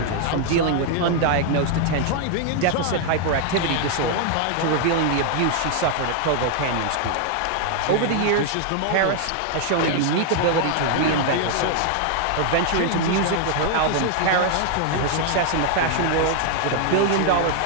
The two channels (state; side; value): different; both; correlation 0.00